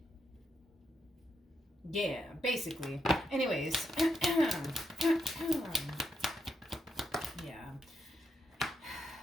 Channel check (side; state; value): both; normal; correlation 0.81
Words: Yeah, basically. Anyways. Yeah.